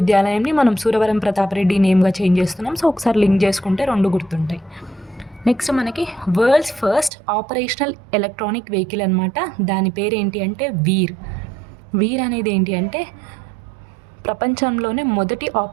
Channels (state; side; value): drops out; left; at 7.1 s